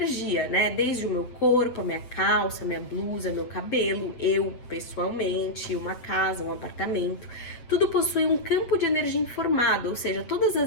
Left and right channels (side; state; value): right; late; 8.0 ms